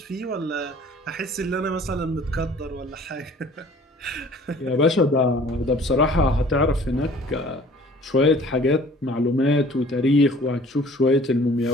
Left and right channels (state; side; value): normal; both; correlation 0.51